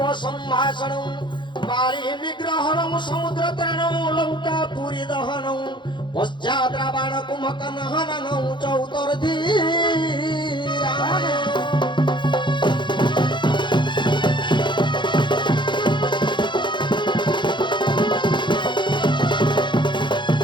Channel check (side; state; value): right; late; 0.23 ms